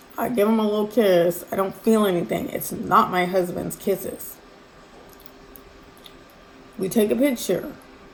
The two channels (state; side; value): identical; both; correlation 1.00